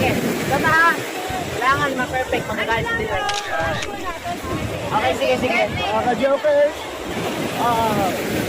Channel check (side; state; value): both; identical; correlation 1.00